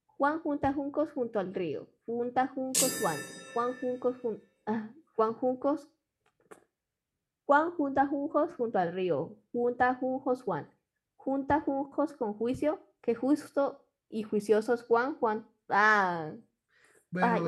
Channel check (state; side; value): identical; both; correlation 1.00